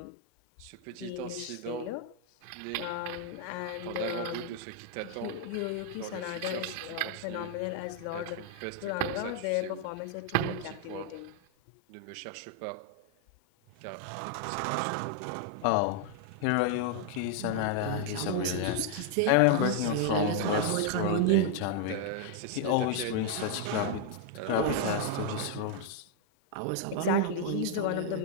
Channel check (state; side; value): different; both; correlation 0.00